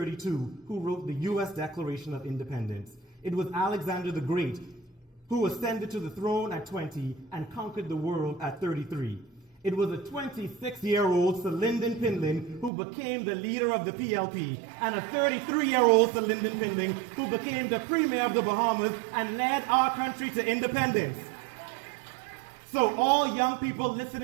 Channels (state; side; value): drops out; left; at 12.7 s